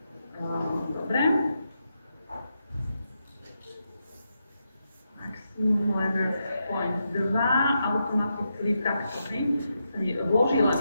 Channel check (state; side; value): inverted; both; correlation -0.84